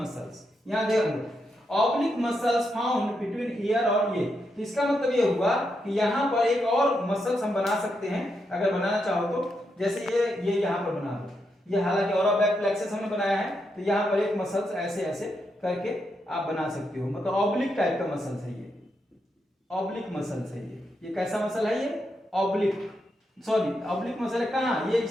यहां देखो oblique muscles found between year और ये, तो इसका मतलब ये हुआ कि यहां पर एक और मसल्स हम बना सकते हैं अगर बनाना चाहो तो, जैसे ये यहां पर बना दो, ये हालांकि और बैक प्लेक्सस हमने बनाया है, तो यहां पर एक मसल्स ऐसे ऐसे करके आप बना सकते हो, मतलब ऑब्लिक टाइप का मसल्स है ये, ऑब्लिक मसल्स है ये कैसा मसल है, ये ऑब्लिक, सॉरी ऑब्लिक मसल है कहां, ये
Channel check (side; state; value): both; normal; correlation 0.83